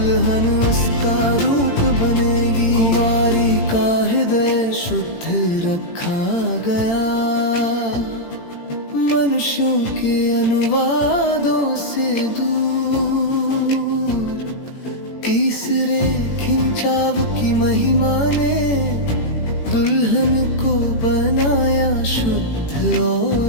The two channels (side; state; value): right; late; 18 ms